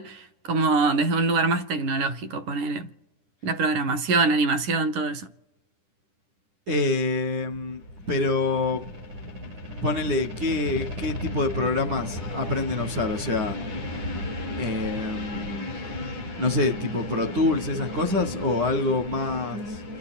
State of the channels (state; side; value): late; left; 10 ms